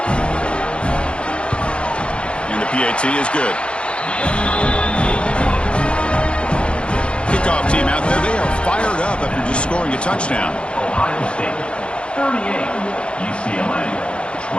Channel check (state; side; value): late; right; 0.057 ms